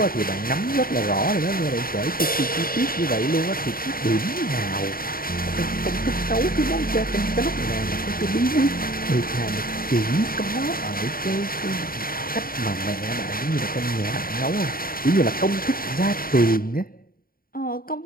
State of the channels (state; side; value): late; right; 0.42 ms